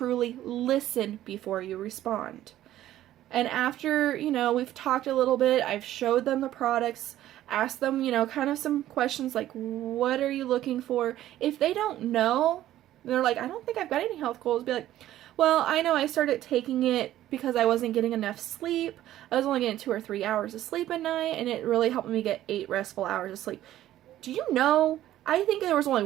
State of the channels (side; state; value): left; quieter; 13.4 dB